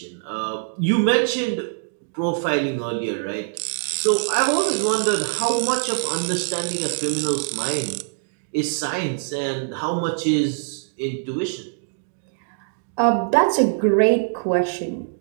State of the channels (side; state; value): left; silent; digital silence